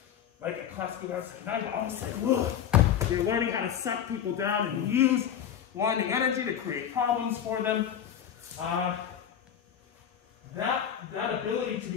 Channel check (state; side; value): quieter; right; 9.2 dB